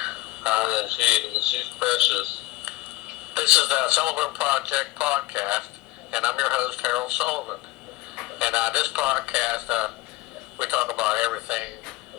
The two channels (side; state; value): right; quieter; 19.1 dB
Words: She's precious. This is the Sullivan Project podcast, and I'm your host, Harold Sullivan. And this podcast, we talk about everything